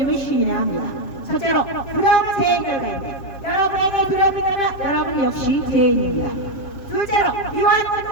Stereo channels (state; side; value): late; right; 7.7 ms